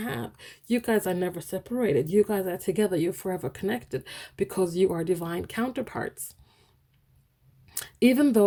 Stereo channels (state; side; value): identical; both; correlation 1.00